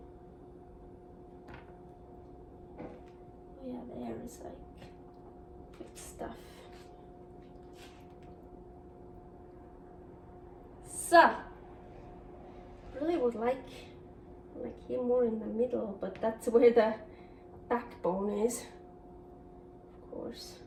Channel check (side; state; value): both; identical; correlation 1.00